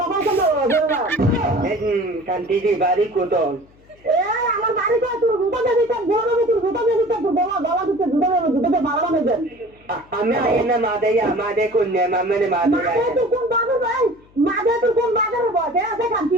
শান্তিদের বাড়ি কোথাও? আমার বাড়িতে তোর জুতা দেবি, তোর গোলাম তোর জুতা দেবি, তোর গলা গলা দিতে জুতা দেবে, জুতাতে মারা নেবে। আমি আয় না মা দেয়া, মা দে কন্যা মামে মা মাঝে দেয়া। তুই কোন বাজার ভাই, মাঝে তুই কোন বাজারে বসে আছে কান্তি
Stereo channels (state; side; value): noise; left; hum, 29 dB below the sound